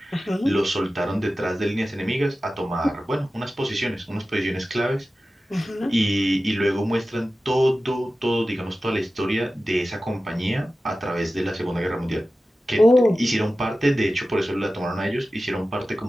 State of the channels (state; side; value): normal; both; correlation 0.95